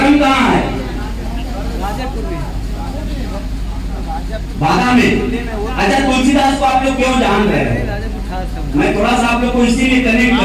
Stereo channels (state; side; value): identical; both; correlation 1.00